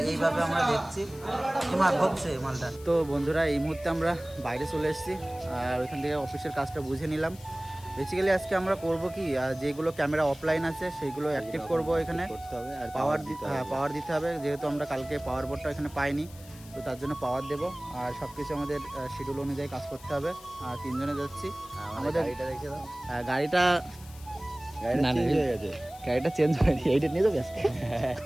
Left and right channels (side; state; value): left; noise; hiss, 21 dB below the sound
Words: এইভাবে আমরা দেখছি হচ্ছে মালটা। তো বন্ধুরা, এই মুহূর্তে আমরা বাইরে চলে এসেছি, আর ওইখান থেকে অফিসের কাজটা বুঝে নিলাম। বেসিক্যালি আজকে আমরা করব কি, যেগুলো ক্যামেরা অফলাইন আছে সেইগুলো অ্যাক্টিভ করব এখানে। আর পাওয়ার দিতে হবে, যেহেতু আমরা কালকে পাওয়ার বোর্ডটা এখানে পাইনি, তো তার জন্য পাওয়ার দেবো। আর সব কিছু আমাদের শিডিউল অনুযায়ী কাজ করতে হবে। আর তিনজনে যাচ্ছি। আমাদের গাড়িটা চেঞ্জ হয়নি, এইটা নিয়ে যাবে।